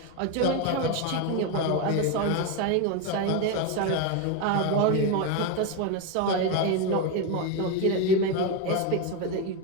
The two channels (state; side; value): different; both; correlation 0.03